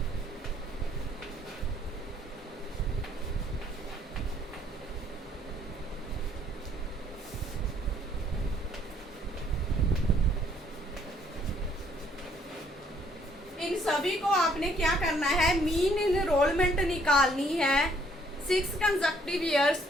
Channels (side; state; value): both; normal; correlation 0.64